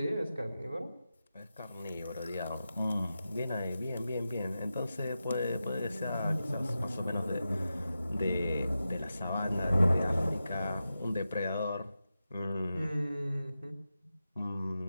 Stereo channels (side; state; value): both; inverted; correlation -0.91